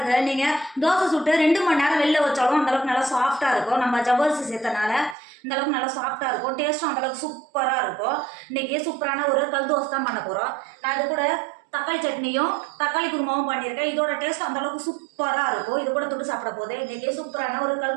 நீங்கள் தோசை சுட்டு 2 மணி நேரம் வெளில வச்சாலும் அந்தளவுக்கு நல்லா சாஃப்டாக இருக்கும். நம்ம ஜவ்வரிசி சேர்த்தனால இந்தளவுக்கு நல்லா சாஃப்டாக இருக்கும். டேஸ்ட்டும் அந்தளவுக்கு சூப்பராக இருக்கும். இன்றைக்கி சூப்பரான ஒரு கல் தோசை தான் பண்ண போகிறோம். நான் இது கூட தக்காளி சட்னியும் தக்காளி குருமாவும் பண்ணியிருக்கேன். இதோட டேஸ்ட் அந்தளவுக்கு சூப்பராக இருக்கும். இது கூட தொட்டு சாப்பிட போது இன்றைக்கி சூப்பரான ஒரு கல்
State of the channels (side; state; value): left; drops out; at 5.2 s